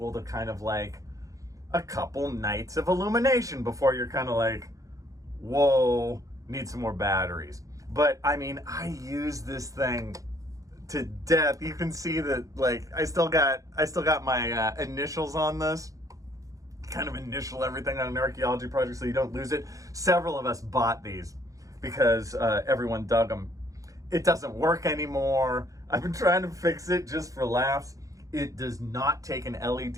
to kind of like a couple nights of illumination before you're kind of like, whoa, need some more batteries. But I mean, I use this thing to death. You can see that, like, I still got my initials on this. Kind of initial everything on an archaeology project so you don't lose it. Several of us bought these because everyone dug them. It doesn't work anymore. I've been trying to fix it just for laughs. It does not take an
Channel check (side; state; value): left; late; 0.16 ms